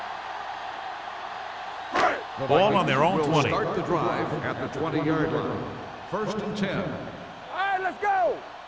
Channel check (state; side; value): identical; both; correlation 1.00